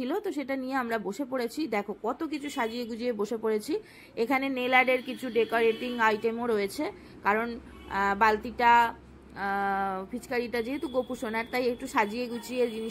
তো সেটা নিয়ে আমরা বসে পড়েছি। দেখো কত কিছু সাজিয়ে গুজিয়ে বসে পড়েছি। এখানে নেল আর্টের কিছু ডেকোরেটিং আইটেমও রয়েছে, কারণ বালতিটা ফিচকারিটা যেহেতু গোপু সোনার, তাই একটু সাজিয়ে গুছিয়ে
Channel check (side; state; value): both; identical; correlation 1.00